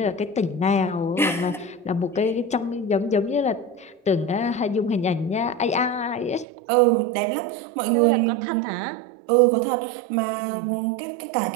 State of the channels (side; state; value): left; drops out; at 6.5 s